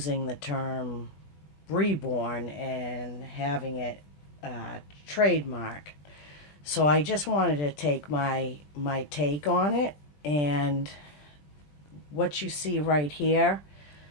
the term reborn and having it trademark. So I just wanted to take my take on it, and what you see right here,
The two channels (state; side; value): late; right; 20 ms